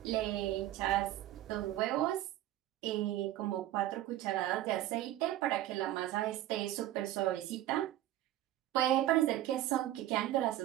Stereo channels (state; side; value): quieter; left; 14.0 dB